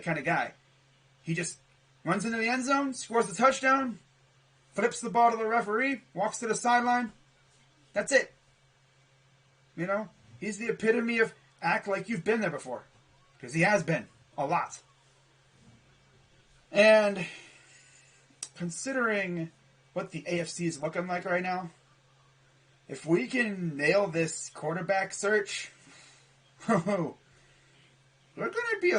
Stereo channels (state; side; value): identical; both; correlation 1.00